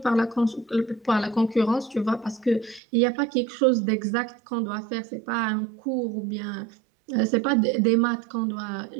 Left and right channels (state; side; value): drops out; left; at 2.8 s